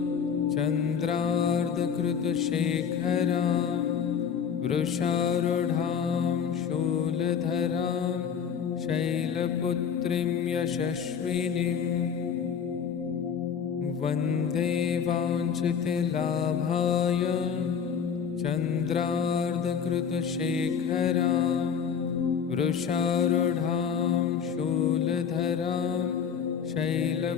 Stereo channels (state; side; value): quieter; right; 7.3 dB